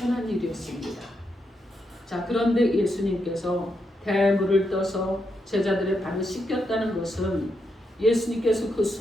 일이었습니다. 자, 그런데 예수님께서 대하여 물을 떠서 제자들의 발을 씻겼다는 것은 예수님께서 그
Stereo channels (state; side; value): normal; both; correlation 0.82